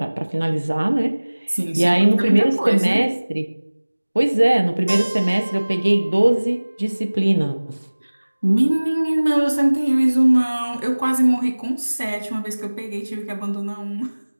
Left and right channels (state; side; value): inverted; both; correlation -1.00